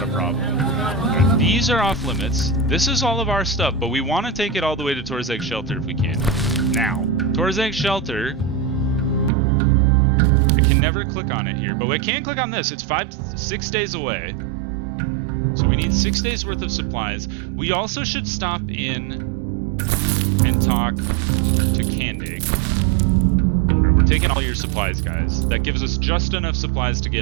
a problem. Right, these are off limits. This is all of our stuff, but we want to take it all the way to Tor'Zag Shelter if we can. Now, Tor'Zag Shelter, I can never click on it here, but we can click on this. It's 6 days away. So we need 6 days worth of supplies. We also should stop in and talk to Candig. Right, we're taking all your supplies, guys. That gives us just enough supplies to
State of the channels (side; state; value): left; drops out; at 9.3 s